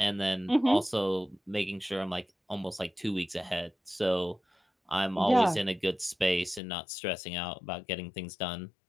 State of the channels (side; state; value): right; drops out; at 6.6 s